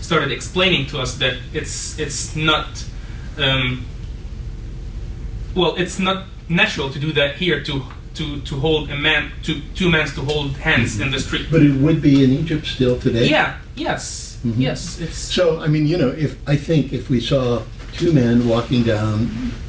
started explaining to us that it's not, well, it's not natural to do that here, to hold a man, two men to hold hands in the street. But it would be in Egypt still today? Yeah, yes, yes, it's... So, I mean, if we saw 2 men walking down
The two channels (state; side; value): identical; both; correlation 1.00